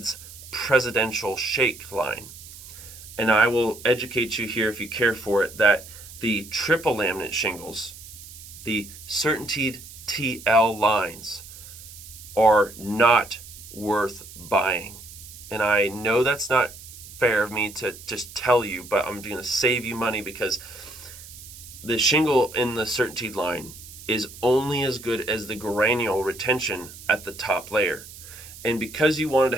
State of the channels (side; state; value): right; noise; hiss, 16 dB below the sound